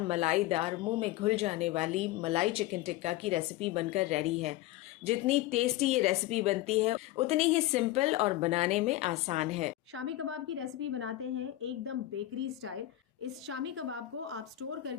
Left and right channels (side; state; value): right; quieter; 15.5 dB